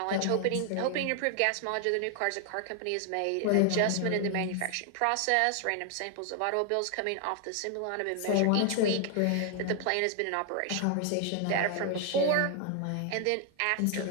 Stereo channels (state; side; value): different; both; correlation 0.00